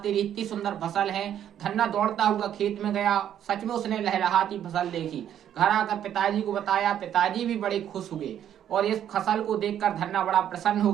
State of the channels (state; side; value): quieter; left; 10.2 dB